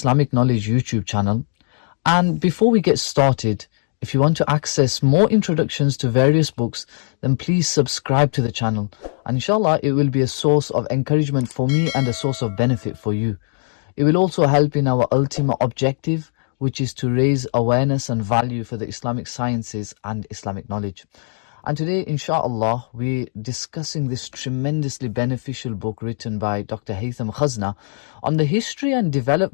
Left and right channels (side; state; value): right; silent; digital silence